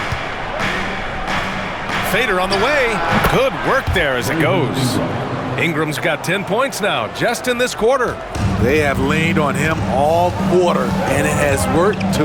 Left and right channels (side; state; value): both; identical; correlation 1.00